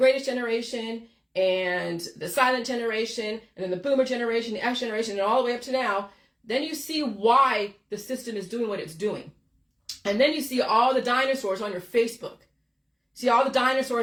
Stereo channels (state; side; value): identical; both; correlation 1.00